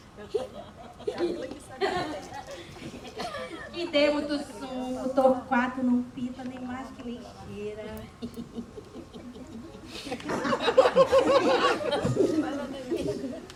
E dei muito sumo, Torquato não pita nem mais que lixeira.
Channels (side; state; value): both; identical; correlation 1.00